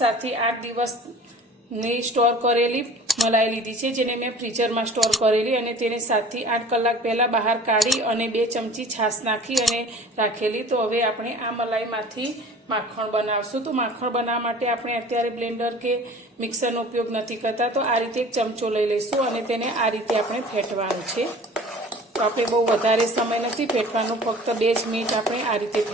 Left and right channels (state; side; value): normal; both; correlation 0.45